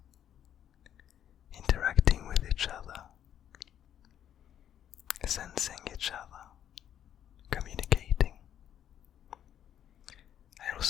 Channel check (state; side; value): quieter; right; 10.1 dB